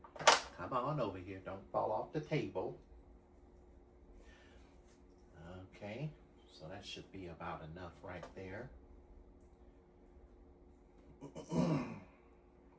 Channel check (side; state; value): both; identical; correlation 1.00